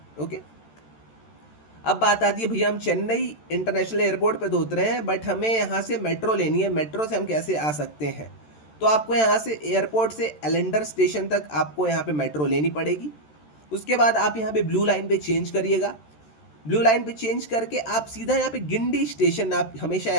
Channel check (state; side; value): late; right; 13 ms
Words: ओके, अब बात आती है, भैया हम चेन्नई इंटरनेशनल एयरपोर्ट पे तो उतरे हैं, बट हमें यहाँ से मेट्रो लेनी है, मेट्रो से हम कैसे आ सकते हैं? तो आपको यहाँ से एयरपोर्ट से एलेंडर स्टेशन तक आपको यहाँ पे मेट्रो लेनी पड़ेगी। उसके बाद आप यहाँ पे ब्लू लाइन पे चेंज करिएगा। ब्लू लाइन पे चेंज करके आप सीधा यहाँ पे गिंडी स्टेशन, आप हमेशा